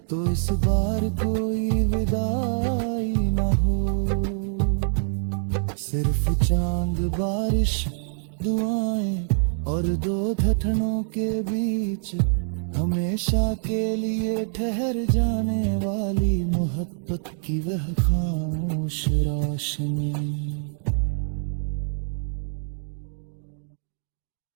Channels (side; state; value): left; silent; digital silence